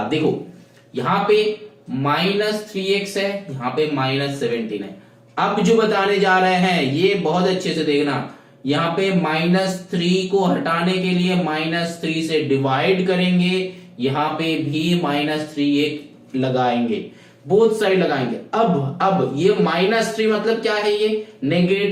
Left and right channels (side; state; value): both; identical; correlation 1.00